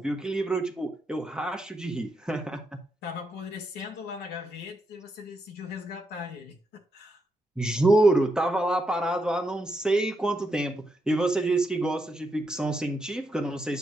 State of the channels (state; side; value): normal; both; correlation 0.82